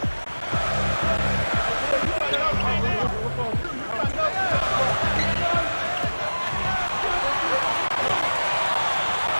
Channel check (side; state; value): both; inverted; correlation -1.00